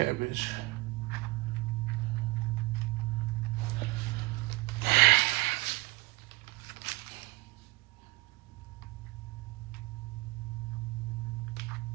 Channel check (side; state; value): left; quieter; 22.5 dB